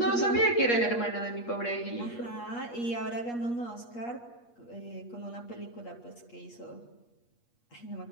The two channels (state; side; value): late; right; 8.4 ms